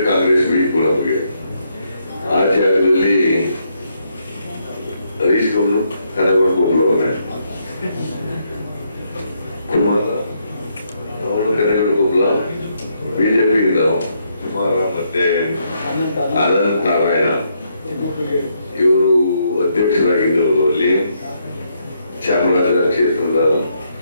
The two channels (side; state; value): both; inverted; correlation -0.76